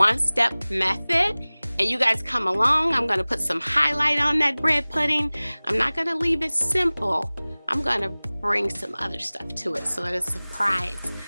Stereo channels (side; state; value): both; inverted; correlation -1.00